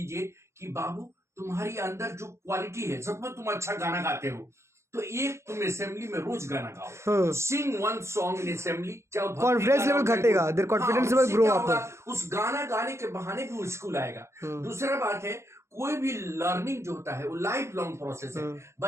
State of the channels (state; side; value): late; left; 0.13 ms